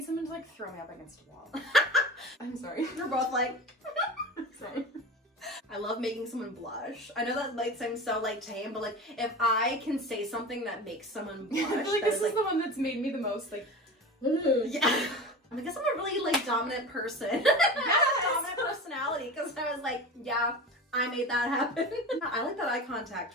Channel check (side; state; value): both; normal; correlation 0.31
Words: someone to like throw me up against a wall. I'm sorry. We're both like, Sorry. I love making someone blush. I know that might seem so like tame, but like if I can say something that makes someone blush, I feel like that this is the one that's made me the most like, yeah. I guess I'm a really like dominant person. I have a dominant personality because I was like, yeah, I made that happen. I like that eye